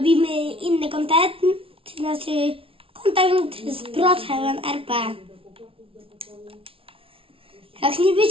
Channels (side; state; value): left; late; 0.26 ms